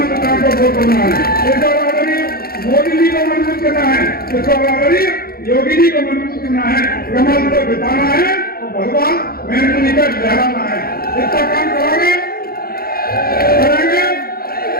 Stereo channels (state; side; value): late; right; 0.44 ms